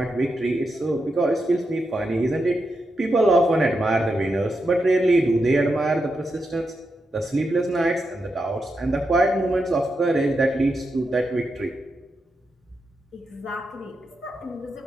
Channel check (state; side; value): normal; both; correlation 0.86